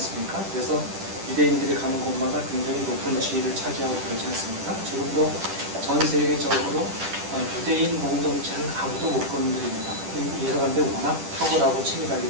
그래서 유대인들이 가는 곳마다 굉장히 높은 지위를 차지하고 그러지 않습니까? 지금도 전 세계적으로 유대인 공동체는 아무도 못 건드립니다. 이 사람들이 워낙 탁월하고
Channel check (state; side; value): late; left; 10 ms